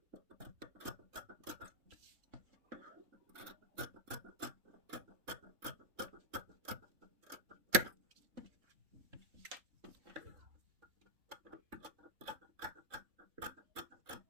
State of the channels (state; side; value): late; left; 3.4 ms